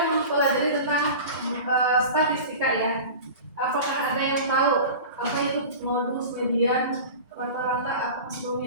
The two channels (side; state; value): both; inverted; correlation -0.34